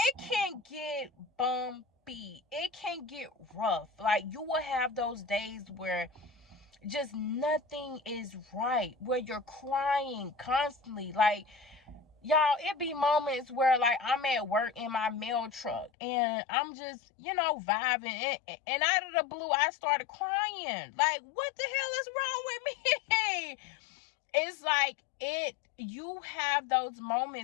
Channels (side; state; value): right; drops out; at 15.9 s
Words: can get bumpy. It can get rough. Like, you will have those days where just nothing is right, where you're crying constantly. Like, y'all, it be moments where, like, I'm at work in my mail truck and I'm just, vibing, and out of the blue I started crying. Like, what the hell is wrong with me? It's like, you have those